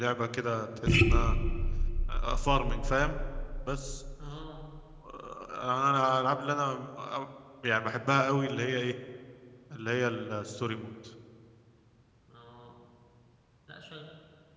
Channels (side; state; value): both; identical; correlation 1.00